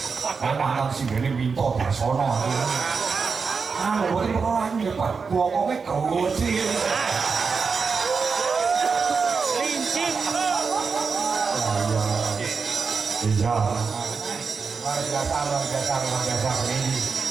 Ana sing ngene minta Dasono. Ah, boleh orang ni pak, buangnya kecil. Lincing. Iya. Biasa ini.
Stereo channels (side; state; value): left; quieter; 5.2 dB